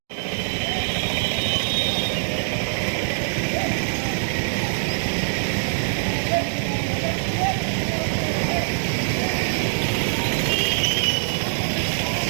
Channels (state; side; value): silent; left; digital silence